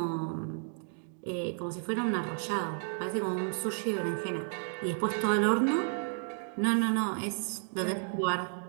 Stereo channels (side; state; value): left; silent; 56 dB below the other